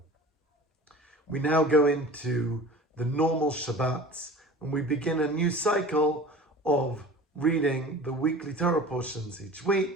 We now go into the normal Shabbats, and we begin a new cycle of reading the weekly Torah portions each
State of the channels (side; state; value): both; normal; correlation 0.40